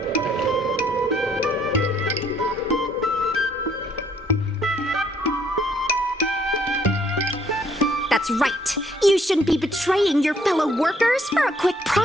That's right. You shouldn't be betraying your fellow workers for a quick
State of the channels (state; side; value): normal; both; correlation 0.66